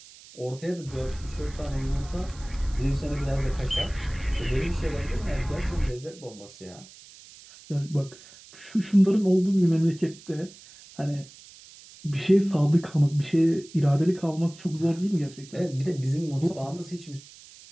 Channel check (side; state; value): right; noise; hiss, 21 dB below the sound